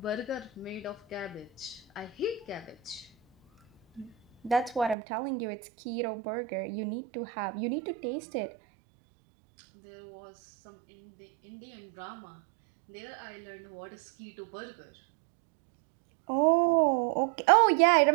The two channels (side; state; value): left; drops out; at 5.0 s